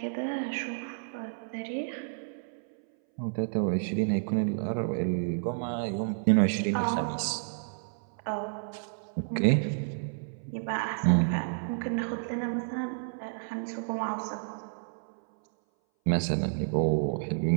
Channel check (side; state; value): left; silent; 57 dB below the other